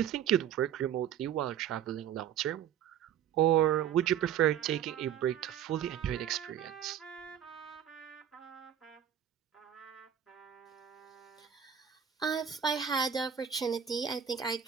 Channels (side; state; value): left; quieter; 9.4 dB